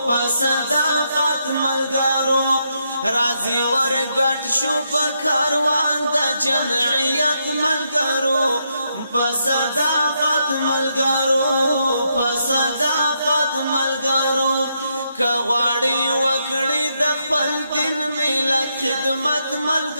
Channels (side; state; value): both; inverted; correlation -0.79